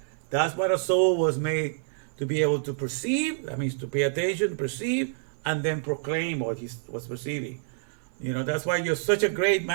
That's what a soul was made to be able to perceive. That means to pay attention, perceive, and then proclaim what he was perceiving. That's why you're such a great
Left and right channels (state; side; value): silent; left; 60 dB below the other